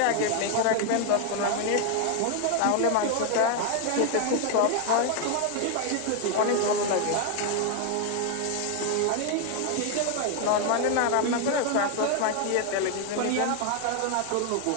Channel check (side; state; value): both; different; correlation 0.00